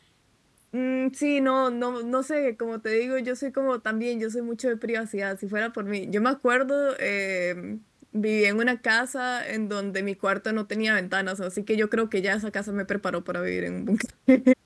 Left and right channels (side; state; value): both; identical; correlation 1.00